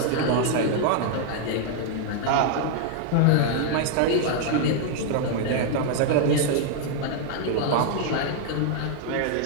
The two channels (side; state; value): both; different; correlation 0.00